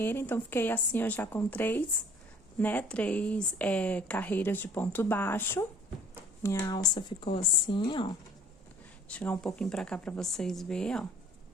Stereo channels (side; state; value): both; normal; correlation 0.53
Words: então, fiquei assim, ó, já com três carreiras de ponto baixo. Minha alça ficou assim, ó. Vou chegar um pouquinho pra cá pra vocês verem, ó.